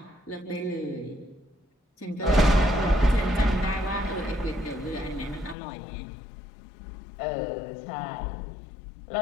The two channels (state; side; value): drops out; right; at 5.6 s